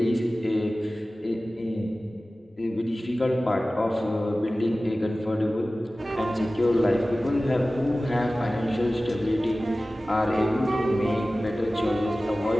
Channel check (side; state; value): both; normal; correlation 0.97